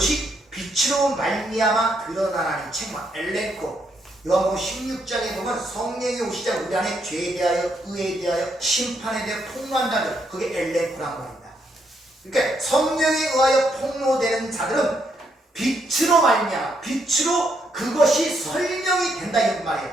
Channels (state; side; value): normal; both; correlation 0.76